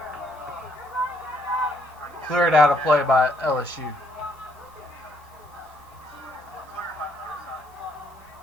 Cleared out of play by LSU.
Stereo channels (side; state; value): both; normal; correlation 0.70